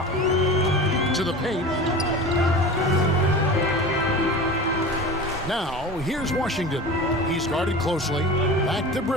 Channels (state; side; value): normal; both; correlation 0.33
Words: To the paint. Now, here's Washington. He's guarded closely. Back to